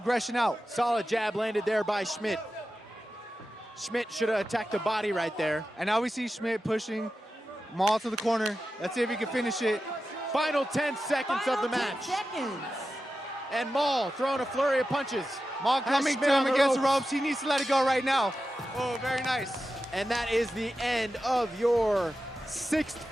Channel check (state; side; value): normal; both; correlation 0.92